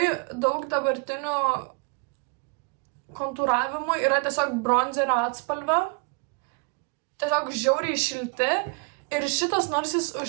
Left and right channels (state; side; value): quieter; left; 35.0 dB